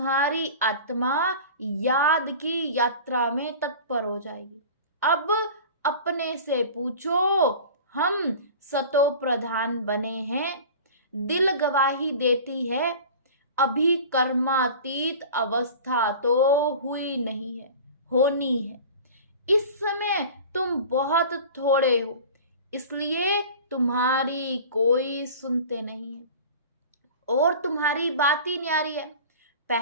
आत्मा याद की यात्रा में तत्पर हो जाएगी। अब अपने से पूछो, हम सतो प्रधान बने हैं। दिल गवाही देती है, अभी कर्मातीत अवस्था तो हुई नहीं है, होनी है। इस समय तुम बहुत थोड़े हो, इसलिए तुम्हारी कोई सुनते नहीं है, और तुम्हारी बात ही न्यारी है।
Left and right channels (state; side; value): inverted; both; correlation -0.38